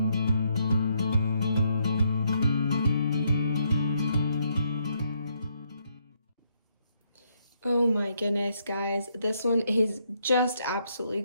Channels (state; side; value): inverted; both; correlation -0.75